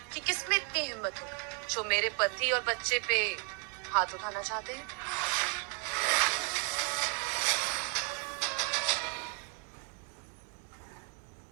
कि किसमें इतनी हिम्मत होगी जो मेरे पति और बच्चे पे हाथ उठाना चाहते हैं।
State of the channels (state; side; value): quieter; left; 33.9 dB